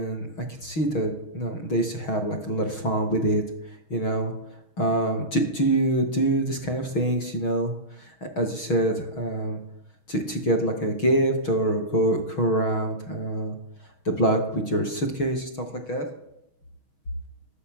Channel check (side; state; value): right; late; 6.3 ms